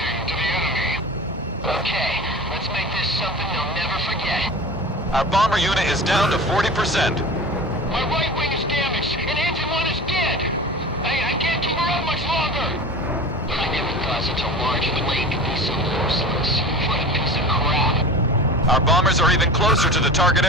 to the enemy. Okay, let's make this something they'll never forget. Our bomber unit is down to 40%. My right wing is damaged, and engine one is dead. I can't keep her up much longer. I never thought such a large plane could be so merciless. What a piece of crap. Our bombers are even closer to the target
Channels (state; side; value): normal; both; correlation 0.34